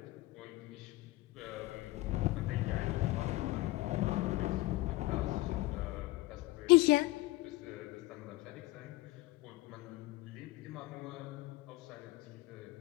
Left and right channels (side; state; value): right; quieter; 19.2 dB